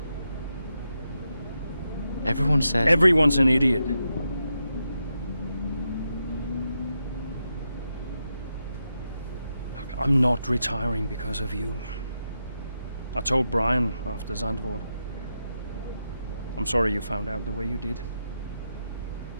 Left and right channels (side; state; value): both; inverted; correlation -0.86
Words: Everyone says... Everyone's an idiot. Look, I'm not retiring because of you. I told Brian after Zandvoort. I'm sorry you found out the way you did.